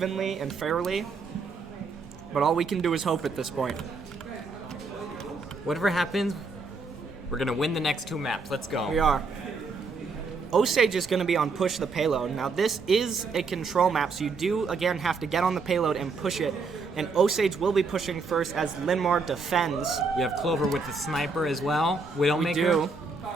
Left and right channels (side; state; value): left; quieter; 4.2 dB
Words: and fairly, but all we can do is hope at this point. Whatever happens, we're going to win the next two maps. Let's go. We are. Osage is going to be on Push the Payload. Now, this is a control map, so you do, again, have to get on the payload and push it. And Osage will be pushing first as Linn-Mar defends. We have Clover with the sniper as well. Widowmaker. We do.